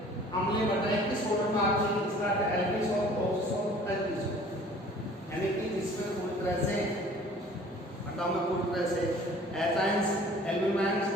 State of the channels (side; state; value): both; normal; correlation 0.50